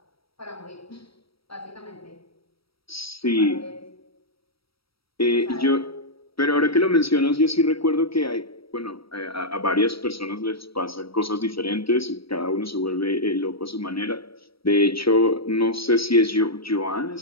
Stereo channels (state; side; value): late; right; 0.75 ms